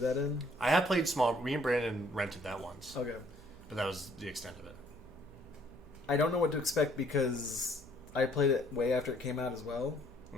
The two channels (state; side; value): noise; right; hum, 20 dB below the sound